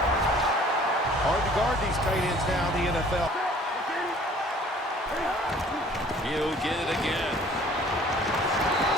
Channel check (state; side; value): normal; both; correlation 0.53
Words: Hard to guard these tight ends now in the NFL. He'll get it again.